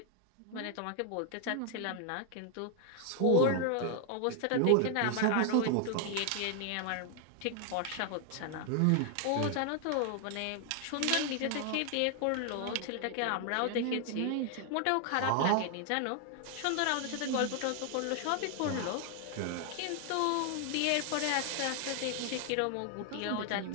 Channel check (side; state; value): both; different; correlation 0.00